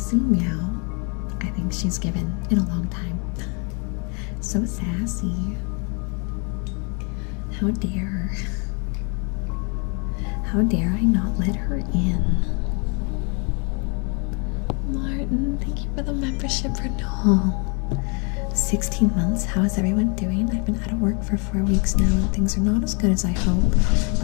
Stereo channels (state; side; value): quieter; right; 35.2 dB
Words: meow I think she's given in a long time. So sassy. How dare. How dare I not let her in? Martin, thank you for the membership renewal. 16 months, how is everyone doing? I've been out of work for 4 weeks now and things are not as good as I hope,